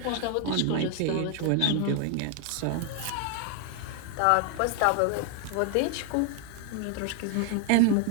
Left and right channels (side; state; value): both; different; correlation 0.00